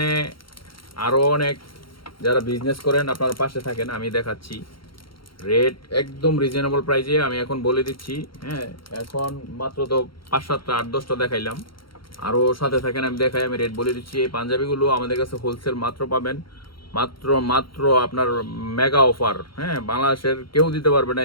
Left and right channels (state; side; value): late; right; 0.73 ms